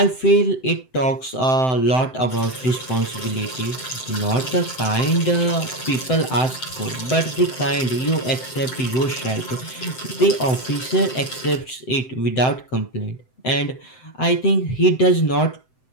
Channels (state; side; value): late; right; 7.8 ms